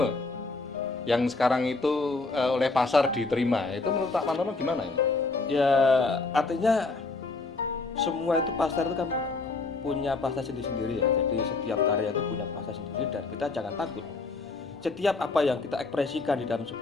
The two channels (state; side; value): quieter; right; 3.7 dB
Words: yang sekarang itu oleh pasar diterima? Itu menurut Pak Pantono gimana ini? Ya, artinya semua itu pasar itu kan punya pasar sendiri-sendiri ya. Jadi setiap karya itu punya pasar sendiri dan kita jangan takut. Setiap apa yang kita ekspresikan di dalam